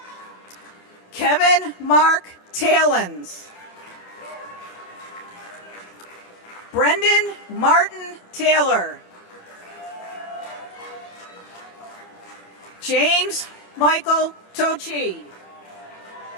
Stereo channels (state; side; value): late; right; 27 ms